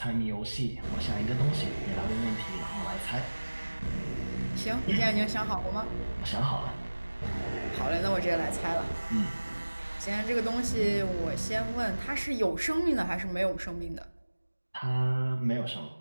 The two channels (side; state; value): both; inverted; correlation -1.00